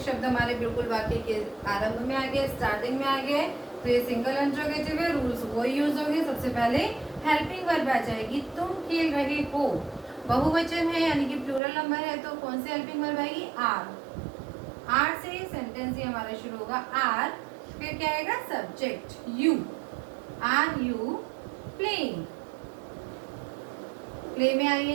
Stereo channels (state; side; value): drops out; left; at 11.6 s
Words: शब्द हमारे बिल्कुल वाक्य के आरंभ में आ गए, स्टार्टिंग में आ गए, तो ये सिंगल इंट्रोगेटिव है। रूल्स वो यूज होंगे। सबसे पहले हेल्पिंग वर्ब आ जाएगी, तुम खेल रहे हो, बहुवचन है यानी कि प्लूरल नंबर है, तो कौन सी हेल्पिंग वर्ब आएगी, आर। आर से सेंटेंस ही हमारा शुरू होगा, आर, फिर क्या आएगा subject you, are you playing, play में